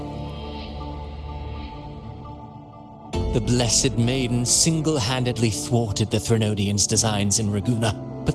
The Blessed Maiden single-handedly thwarted the Threnodian's designs in Raguna,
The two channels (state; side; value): identical; both; correlation 1.00